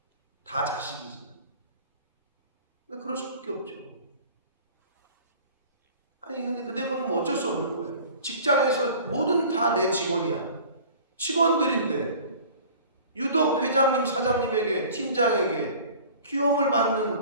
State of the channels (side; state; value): both; inverted; correlation -0.45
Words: 다 자식이지. 근데 그럴 수밖에 없죠. 아니 근데 그건 뭐 어쩔 수 없는 거예요. 직장에서 뭐든 다 내 직원이야. 직원들인데 유독 회장님, 사장님에게, 팀장에게 귀여움을